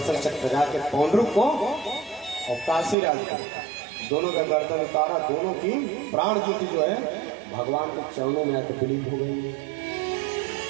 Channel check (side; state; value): left; drops out; at 3.0 s